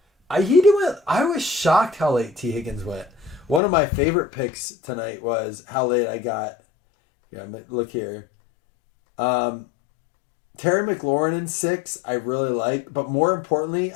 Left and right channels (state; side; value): drops out; right; at 3.6 s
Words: I was shocked how late T. Higgins went. One of my favorite picks tonight was how late I got. Yeah, look here. Terry McLaurin in 6, I really like. But more importantly,